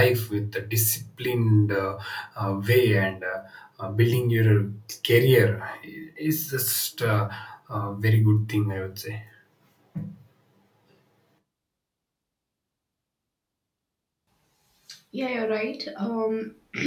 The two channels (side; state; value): both; identical; correlation 1.00